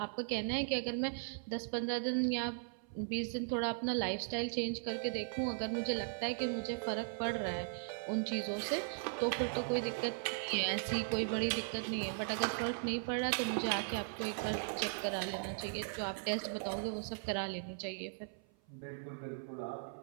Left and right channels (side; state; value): left; silent; 52 dB below the other